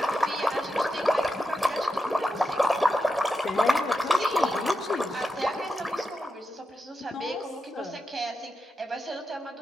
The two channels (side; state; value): both; normal; correlation 0.88